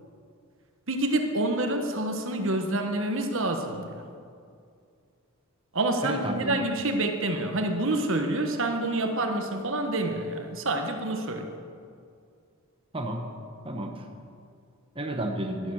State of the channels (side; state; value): both; normal; correlation 0.22